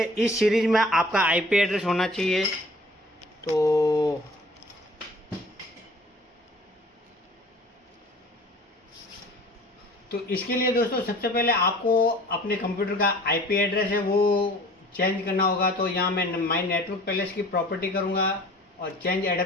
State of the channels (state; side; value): normal; both; correlation 0.48